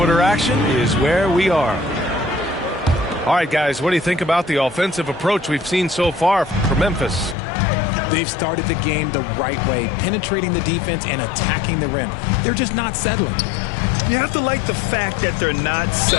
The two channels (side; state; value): right; drops out; at 7.4 s